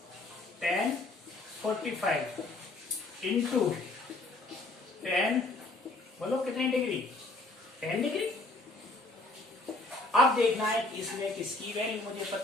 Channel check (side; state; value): right; quieter; 3.0 dB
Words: 10 45 into 10, बोलो कितनी डिग्री 10 डिग्री। अब देखना है कि इसमें किसकी वैल्यू मुझे